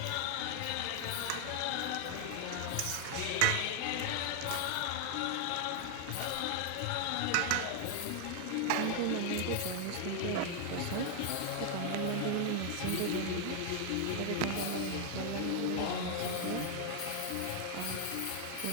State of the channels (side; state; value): both; different; correlation 0.00